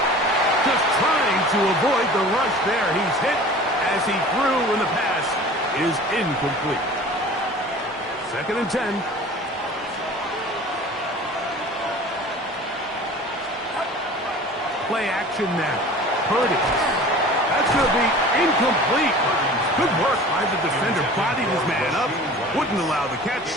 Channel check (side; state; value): both; normal; correlation 0.42